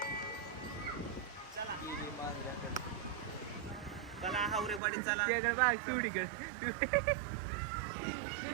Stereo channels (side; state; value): left; drops out; at 4.8 s